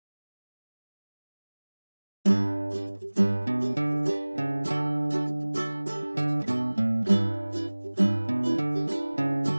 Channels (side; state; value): both; inverted; correlation -1.00